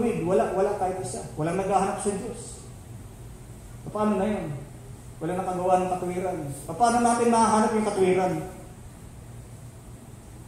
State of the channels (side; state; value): both; identical; correlation 1.00